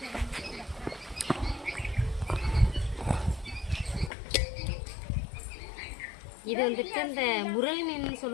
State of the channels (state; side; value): drops out; right; at 4.1 s